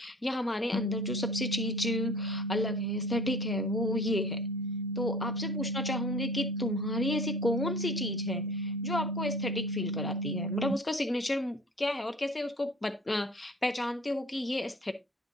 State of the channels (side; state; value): both; normal; correlation 0.44